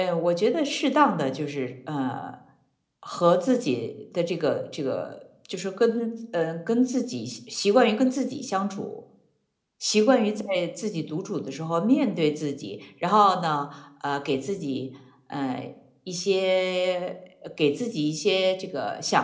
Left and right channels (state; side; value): identical; both; correlation 1.00